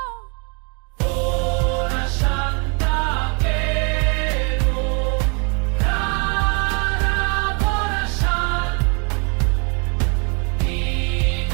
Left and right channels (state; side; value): quieter; left; 35.3 dB